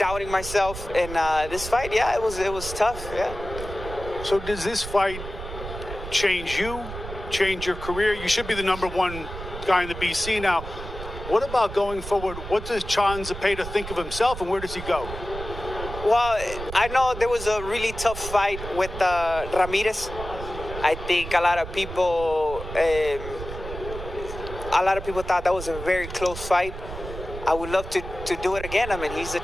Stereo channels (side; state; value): right; noise; rumble, 10 dB below the sound